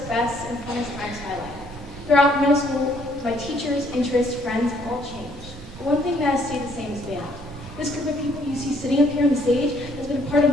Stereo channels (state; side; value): normal; both; correlation 0.65